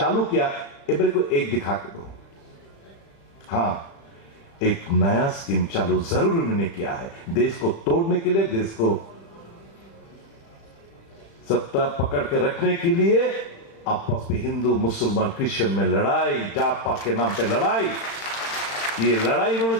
किया, मेरे को एक दिखा के दो। हां, एक नया स्कीम चालू जरूर उन्होंने किया है, देश को तोड़ने के लिए, देश को सत्ता पकड़ के रखने के लिए, आपस में हिंदू मुसलमान क्रिश्चियन में लड़ाई, जात पात के नाम पे लड़ाई, ये लड़ाई इन्होंने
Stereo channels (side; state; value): right; late; 36 ms